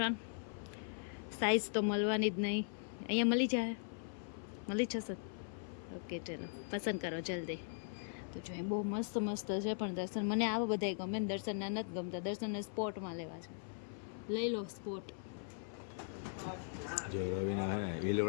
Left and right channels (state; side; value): silent; right; 51 dB below the other